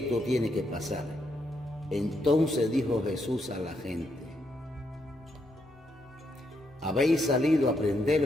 tiene que pasar? Entonces dijo Jesús a la gente: habéis salido a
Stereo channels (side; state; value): both; normal; correlation 0.78